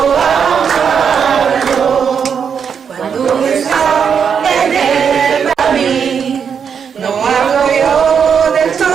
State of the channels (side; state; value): left; quieter; 7.0 dB